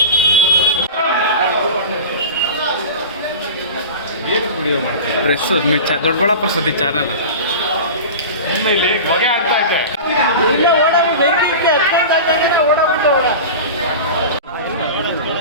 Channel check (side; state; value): both; inverted; correlation -0.31